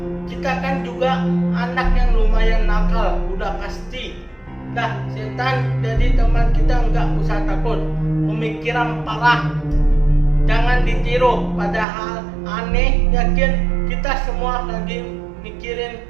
Kita kan juga anak yang lumayan nakal, udah pasti. Dah setan jadi teman kita, nggak usah takut. Pemikiran parah jangan ditiru, padahal aneh. Yakin kita semua lagi mikirin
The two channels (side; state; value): left; drops out; at 11.9 s